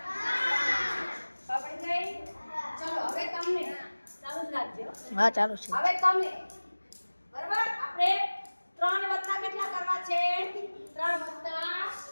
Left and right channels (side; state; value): both; inverted; correlation -1.00